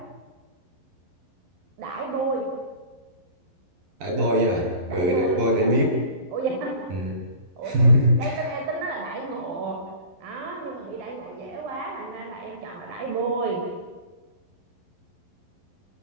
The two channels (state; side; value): late; left; 12 ms